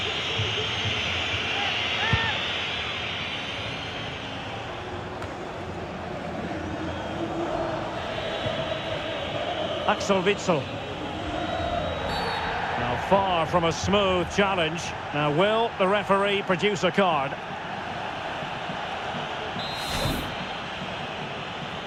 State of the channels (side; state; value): both; identical; correlation 1.00